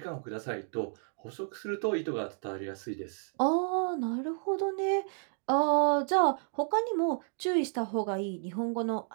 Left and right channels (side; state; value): left; silent; 57 dB below the other